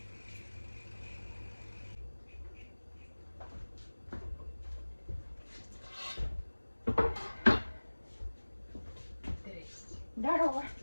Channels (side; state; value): both; inverted; correlation -1.00